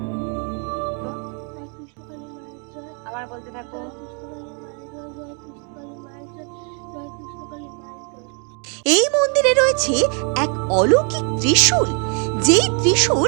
আবার বলতে থাকো। এই মন্দিরে রয়েছে এক অলৌকিক ত্রিশূল, যেই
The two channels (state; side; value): quieter; left; 38.4 dB